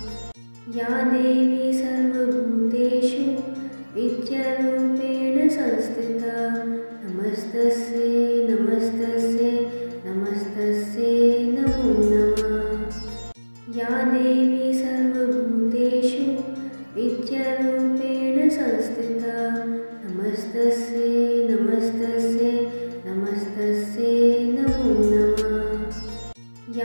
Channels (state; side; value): inverted; both; correlation -1.00